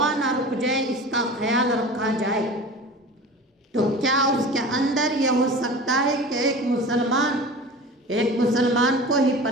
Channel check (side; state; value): both; normal; correlation 0.36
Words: نہ رک جائے، اس کا خیال رکھا جائے، تو کیا اس کے اندر یہ ہو سکتا ہے کہ ایک مسلمان کو ہی